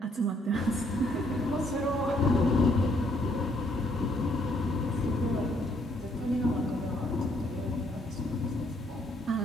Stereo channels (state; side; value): normal; both; correlation 0.69